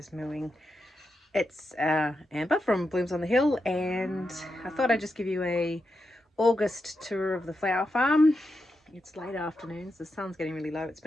mooing. It's Amber from Blooms on the Hill, and I thought I'd just give you a August tour of the flower farm. It's late afternoons, the sun's getting really low. It's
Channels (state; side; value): normal; both; correlation 0.86